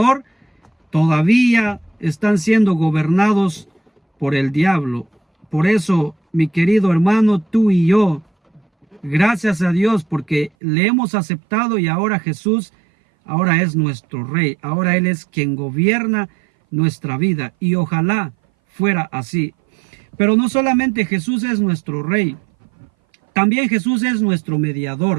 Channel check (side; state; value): left; drops out; at 10.5 s